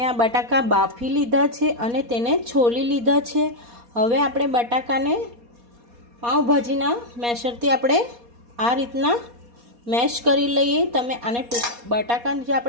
આ બટાકા બાફી લીધા છે અને તેને છોલી લીધા છે। હવે આપણે બટાકાને પાઉંભાજીના મેશરથી આપણે આ રીતના મેશ કરી લઈએ। તમે આને બટાકાની જે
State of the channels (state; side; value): late; left; 4.2 ms